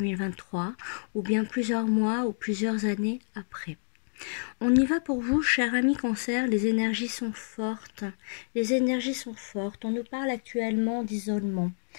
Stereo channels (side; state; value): right; silent; digital silence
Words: ou bien plusieurs mois ou plusieurs années après. On y va pour vous, cher ami cancer, les énergies sont fortes. Les énergies sont fortes. On nous parle actuellement d'isolement.